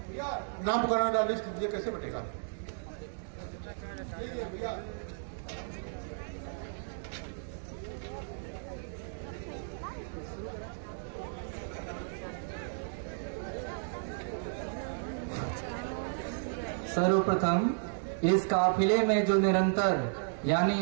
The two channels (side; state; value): left; silent; digital silence